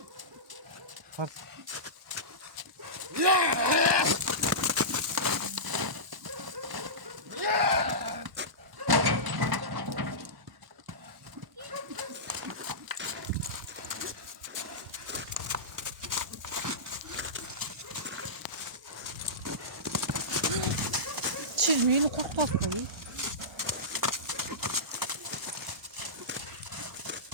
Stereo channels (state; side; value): late; left; 1.1 ms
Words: Al. Çizmeyi kurtlar koyuyor.